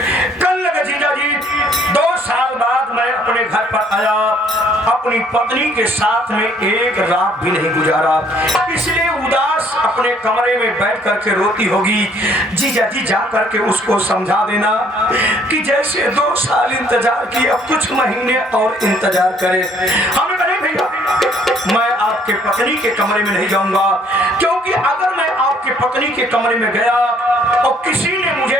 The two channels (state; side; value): normal; both; correlation 0.62